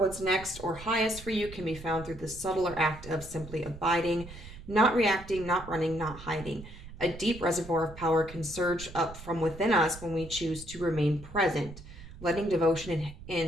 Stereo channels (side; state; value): right; noise; rumble, 15 dB below the sound